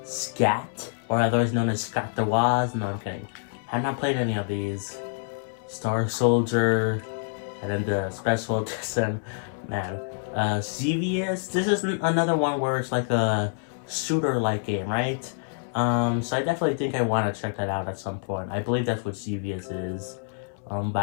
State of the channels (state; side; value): silent; right; digital silence